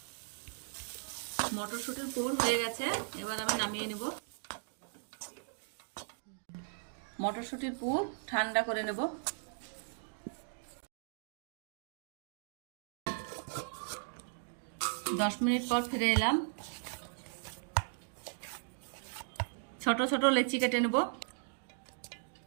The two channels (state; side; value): silent; left; digital silence